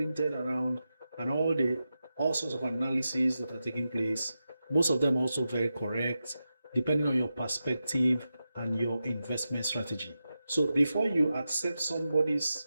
around and all sorts of analyses that are taking place. Most of them also very correct, depending on your perspective and your investment strategy. So before you accept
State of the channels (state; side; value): inverted; both; correlation -0.90